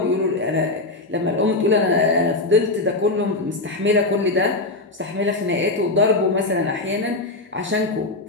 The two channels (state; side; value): quieter; right; 3.0 dB